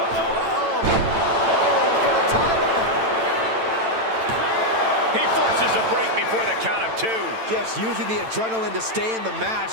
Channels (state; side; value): late; left; 9.0 ms